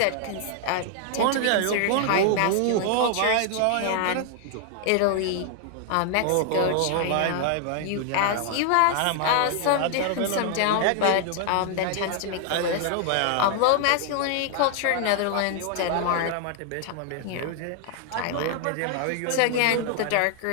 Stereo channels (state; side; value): different; both; correlation 0.00